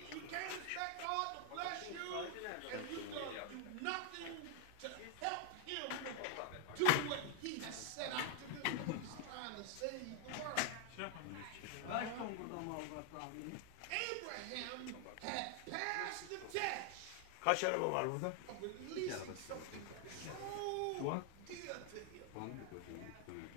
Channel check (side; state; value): both; different; correlation 0.00